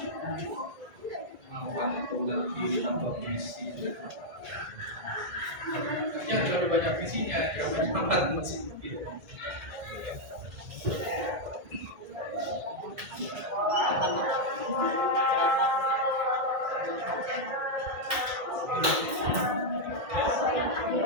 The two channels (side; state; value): left; late; 1.9 ms